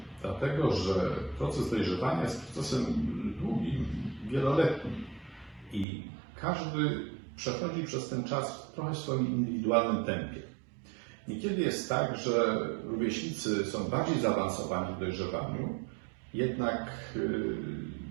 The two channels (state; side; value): drops out; left; at 5.9 s